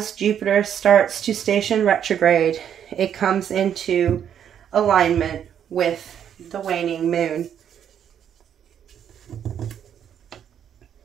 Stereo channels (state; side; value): quieter; left; 9.1 dB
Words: Jupiter starts to station retrograde, it comes into alignment with the waning moon.